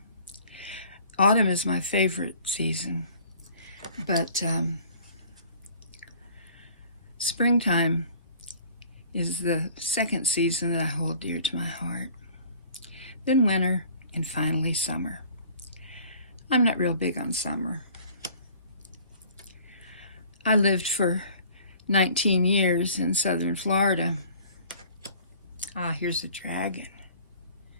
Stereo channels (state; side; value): inverted; both; correlation -0.51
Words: Autumn is my favorite season, but springtime is the second season that I hold dear to my heart. Then winter, and finally summer. I'm not real big on summer. I lived for 19 years in southern Florida. Ah, here's a dragon.